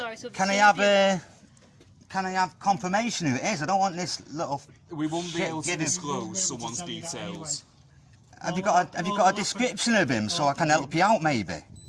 I have confirmation who it is? I don't want this little. We won't be able to disclose someone's details. Have you got a description of him so I can help you out, maybe?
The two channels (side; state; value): both; identical; correlation 1.00